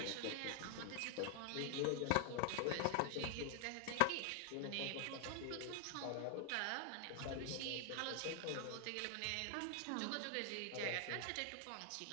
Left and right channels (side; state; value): both; different; correlation 0.00